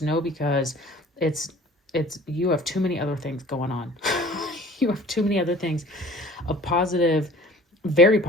no, because it's you have too many other things going on. You have too many other things of positive, very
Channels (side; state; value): both; normal; correlation 0.47